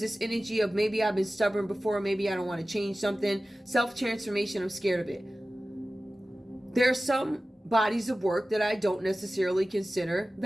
this energy of maybe I've been stubborn before, maybe I don't want to change something. Self-transformation, I'm scared of it. There are some bodies of work that I don't necessarily consider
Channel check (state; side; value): normal; both; correlation 0.96